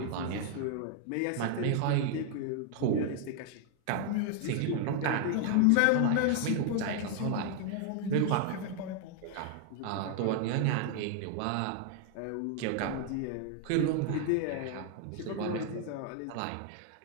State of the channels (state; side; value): different; both; correlation 0.00